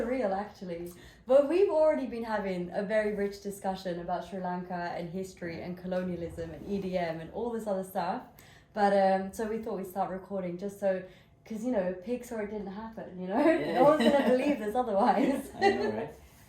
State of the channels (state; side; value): identical; both; correlation 1.00